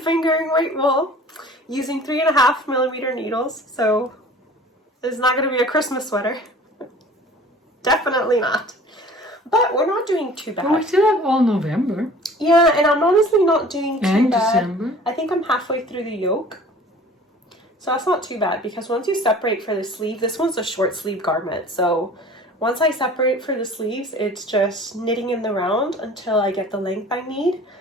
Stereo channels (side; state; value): both; normal; correlation 0.46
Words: weight wool using 3.5mm needles. So it's not going to be a Christmas sweater. Definitely not. But we're not doing too bad. Well, we still have all November. Yeah, and I'm honestly not doing too and bad. December. I think I'm halfway through the yoke. So that's not too bad because once you separate for the sleeve, this one's a short sleeve garment. So once I separate for the sleeves, it's just knitting in the round until I get the length I need.